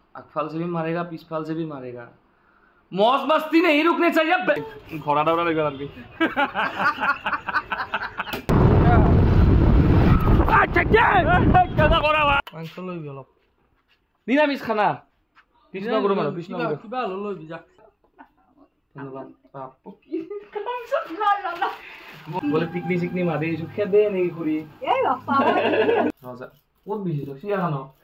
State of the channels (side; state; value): both; identical; correlation 1.00